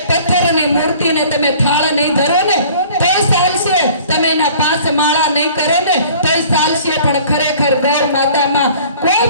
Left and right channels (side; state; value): both; inverted; correlation -0.50